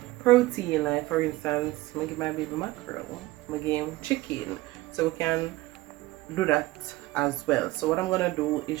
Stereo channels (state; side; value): quieter; left; 18.7 dB